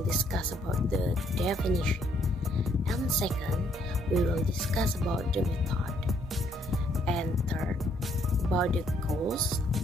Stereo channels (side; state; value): both; normal; correlation 0.69